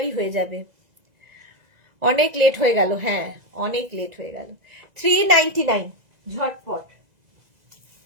হয়ে যাবে। অনেক লেট হয়ে গেল, হ্যাঁ অনেক লেট হয়ে গেল। 399 ঝটপট,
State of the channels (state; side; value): late; left; 2.0 ms